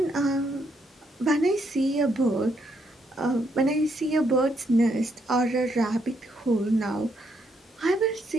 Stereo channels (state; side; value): normal; both; correlation 0.75